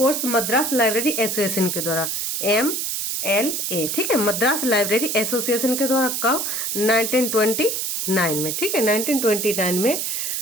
Madras library association के द्वारा, MLA। ठीक है, मद्रास लाइब्रेरी एसोसिएशन के द्वारा कब, 1929 में। ठीक है, 1929 में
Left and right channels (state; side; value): noise; right; hiss, 2 dB below the sound